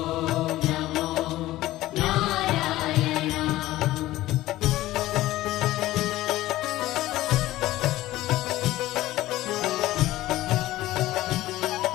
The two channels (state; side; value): quieter; right; 16.2 dB